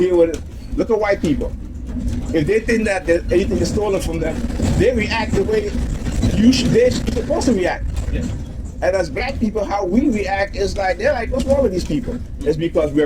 with it. Look at white people. If they think that anything is stolen from them, they react the way they're supposed to react. Yeah. And as black people, how we react is like, they're like, what's wrong with these people? It's because we're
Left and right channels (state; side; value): identical; both; correlation 1.00